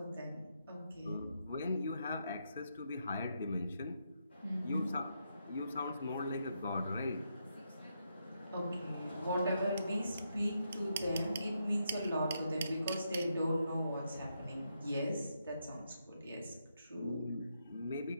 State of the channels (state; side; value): inverted; both; correlation -0.81